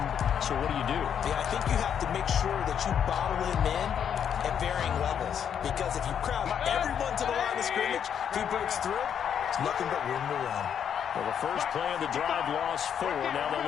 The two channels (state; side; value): quieter; right; 8.4 dB